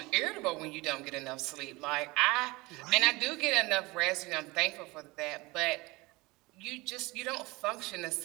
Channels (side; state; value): left; quieter; 23.0 dB